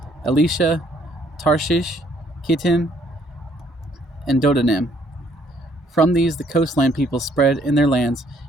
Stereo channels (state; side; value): normal; both; correlation 0.65